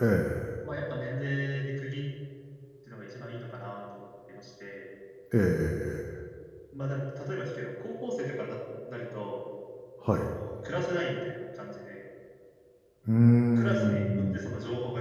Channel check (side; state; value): both; identical; correlation 1.00